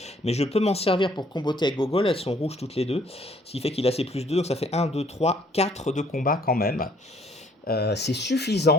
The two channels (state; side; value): normal; both; correlation 0.62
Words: Mais je peux m'en servir pour comboter avec Gogol. Elles sont rouges toutes les deux. Ce qui fait qu'il a ses plus 2. Donc ça fait 1, 2, 3, 4 de combat quand même. C'est